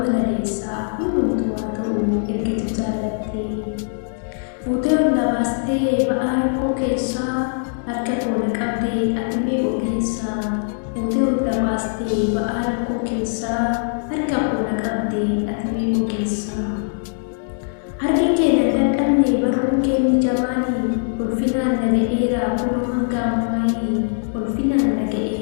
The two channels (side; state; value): right; silent; digital silence